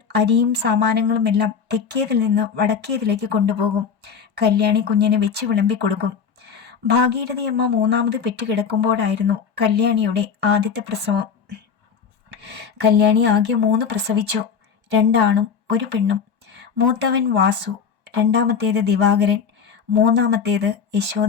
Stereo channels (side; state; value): right; quieter; 6.6 dB